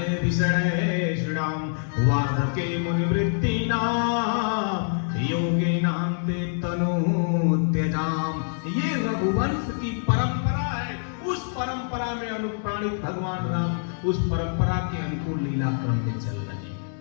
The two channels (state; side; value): silent; right; digital silence